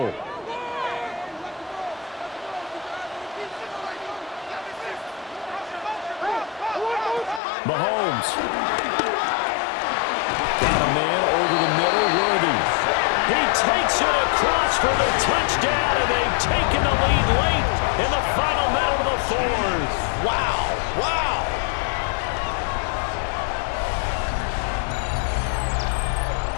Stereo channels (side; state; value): right; drops out; at 7.4 s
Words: Mahomes. Got a man over the middle, Worthy. He takes it across for the touchdown, and they've taken the lead late in the final minute of the fourth. Wow, wow.